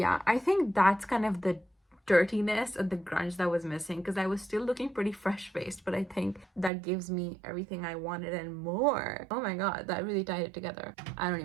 I think that's kind of the dirtiness and the grunge that was missing, because I was still looking pretty fresh-faced, but I think that gives me everything I wanted and more. Oh my god, that really tied it together. I don't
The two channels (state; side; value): drops out; left; at 6.7 s